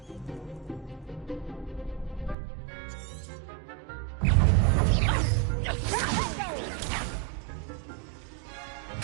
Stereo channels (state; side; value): drops out; left; at 2.4 s